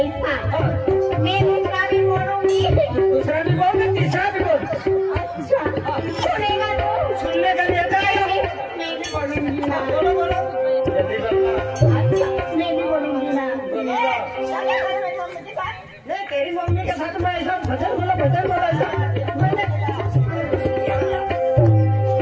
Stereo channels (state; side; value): identical; both; correlation 1.00